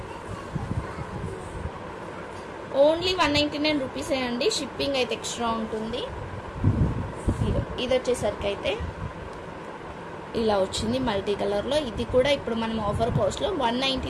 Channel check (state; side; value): identical; both; correlation 1.00